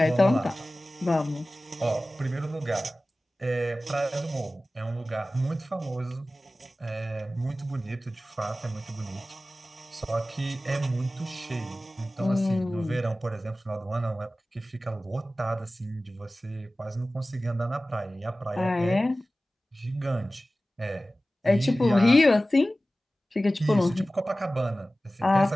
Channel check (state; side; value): normal; both; correlation 0.96